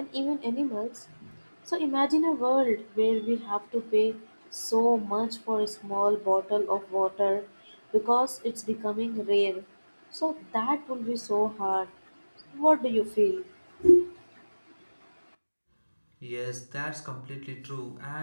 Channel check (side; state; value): both; inverted; correlation -1.00